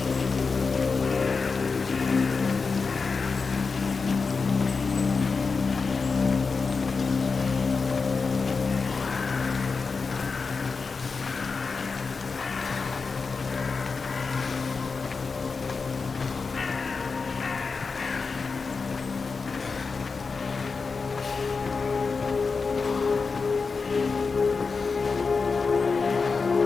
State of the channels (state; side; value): quieter; right; 4.7 dB